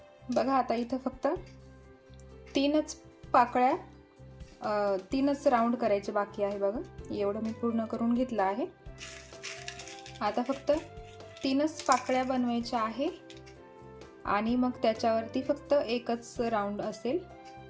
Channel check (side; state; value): both; identical; correlation 1.00